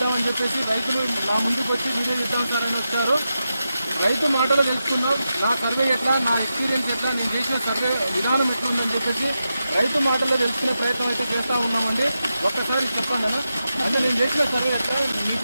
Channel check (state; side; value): inverted; both; correlation -0.89